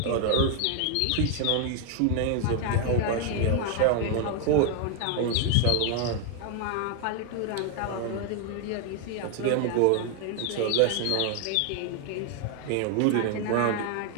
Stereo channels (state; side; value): different; both; correlation 0.01